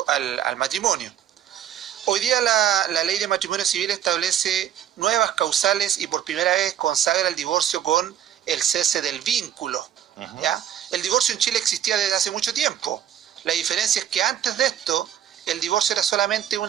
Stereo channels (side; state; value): left; quieter; 10.1 dB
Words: matrimonio. Hoy día la ley de matrimonio civil establece nuevas causales y por primera vez consagra el divorcio con el cese del vínculo. ¿Ya? El divorcio en Chile existía desde hace mucho tiempo. La diferencia es que antes de esto el divorcio era solamente